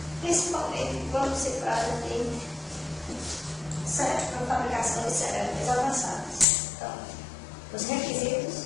principalmente quando se trata de fabricação de cerâmicas avançadas. Então, os requisitos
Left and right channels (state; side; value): drops out; right; at 6.5 s